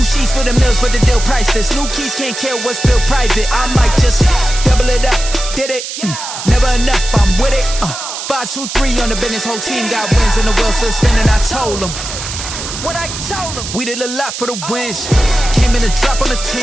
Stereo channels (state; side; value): noise; right; hiss, 8 dB below the sound